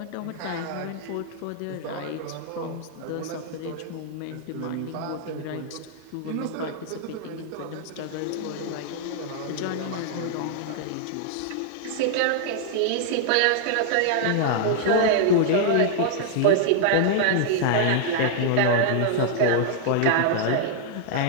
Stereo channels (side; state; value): both; different; correlation -0.01